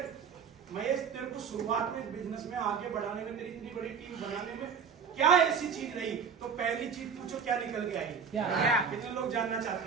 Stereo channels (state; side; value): quieter; left; 6.5 dB